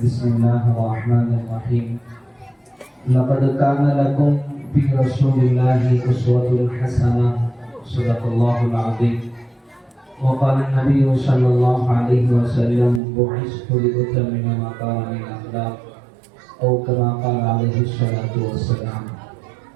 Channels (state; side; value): drops out; left; at 13.0 s